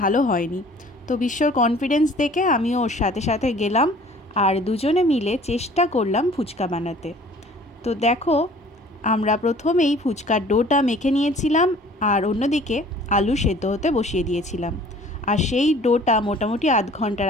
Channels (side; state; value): both; normal; correlation 0.51